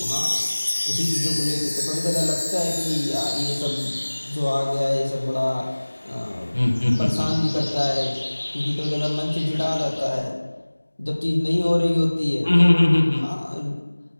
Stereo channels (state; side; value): inverted; both; correlation -1.00